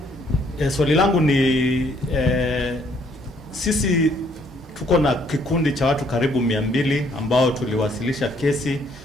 Swali langu ni sisi tuko na kikundi cha watu karibu 200 ambao tuliwasilisha kesi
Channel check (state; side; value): normal; both; correlation 0.66